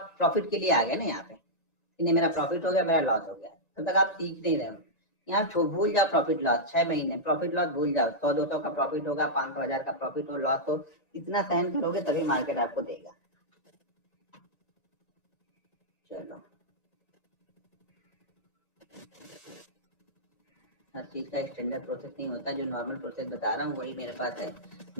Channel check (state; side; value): late; right; 1.9 ms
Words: प्रॉफिट के लिए आ गए ना यहाँ पे कि नहीं मेरा प्रॉफिट हो गया, मेरा लॉस हो गया। तब तक आप सीख नहीं रहे हो। यहाँ भूल जाओ प्रॉफिट लॉस, 6 महीने प्रॉफिट लॉस भूल जाओ। 100-200 का प्रॉफिट होगा, 500-1000 का प्रॉफिट हो, लॉस हो, इतना सहन करोगे तभी मार्केट आपको देगा। चलो, हर चीज का स्टैंडर्ड प्रोसेस नहीं होता। जो नॉर्मल प्रोसेस बता रहा हूँ वही मेरे पास है।